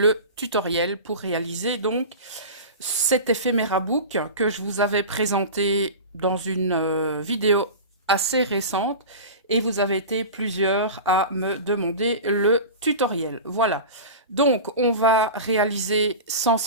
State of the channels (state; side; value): inverted; both; correlation -0.31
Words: tutoriel pour réaliser donc cet éphéméra book que je vous avais présenté dans une vidéo assez récente et vous avez été plusieurs à me demander le tutoriel. Voilà, donc on va réaliser